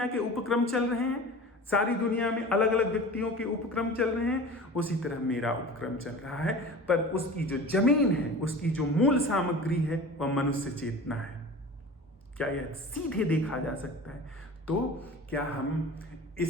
के उपक्रम चल रहे हैं, सारी दुनिया में अलग अलग व्यक्तियों के उपक्रम चल रहे हैं, उसी तरह मेरा उपक्रम चल रहा है। पर उसकी जो जमीन है, उसकी जो मूल सामग्री है, वह मनुष्य चेतना है। क्या यह सीधे देखा जा सकता है? तो क्या हम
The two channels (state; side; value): normal; both; correlation 0.37